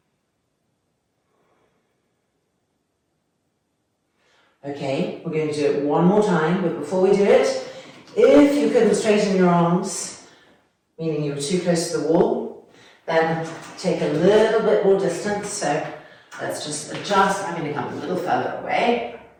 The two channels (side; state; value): both; identical; correlation 1.00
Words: Okay, we're going to do it one more time, but before we do it, if you couldn't straighten your arms, meaning you were too close to the wall, then take a little bit more distance. So let's just adjust. I'm going to come a little further away.